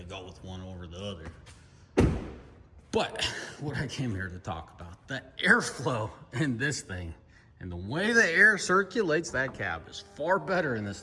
go with one over the other. But what I came here to talk about, the airflow in this thing and the way the air circulates that cab is far better in this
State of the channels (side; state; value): both; identical; correlation 1.00